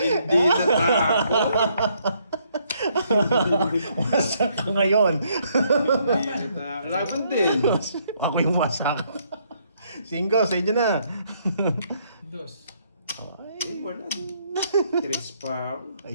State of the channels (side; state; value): both; inverted; correlation -0.70